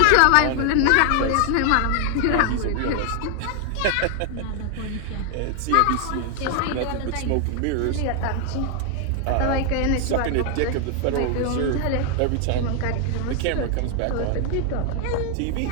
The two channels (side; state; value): both; different; correlation 0.00